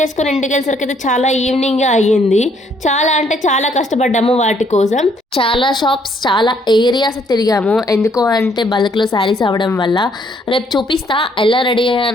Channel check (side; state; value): both; normal; correlation 0.67